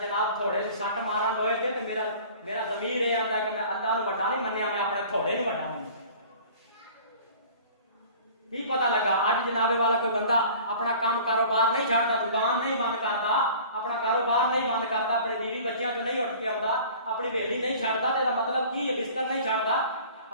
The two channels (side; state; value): both; inverted; correlation -0.46